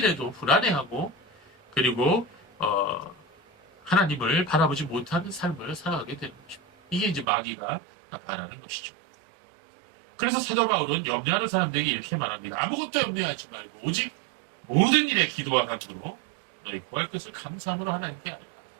불안해하고 그리고 하나님을 바라보지 못하는 삶을 살아가게 되는 것입니다. 이게 이제 마귀가 바라는 것이죠. 그래서 사도 바울은 염려하는 사람들에게 이렇게 말합니다. 아무것도 염려하지 말고 오직 모든 일에 기도와 간구로 너희 구할 것을 감사함으로 하나님께 아뢰라.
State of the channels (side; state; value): left; drops out; at 7.2 s